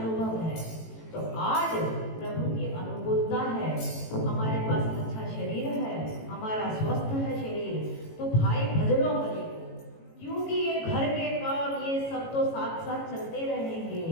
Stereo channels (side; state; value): right; late; 18 ms